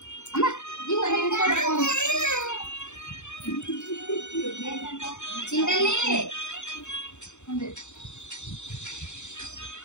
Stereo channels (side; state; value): right; late; 0.84 ms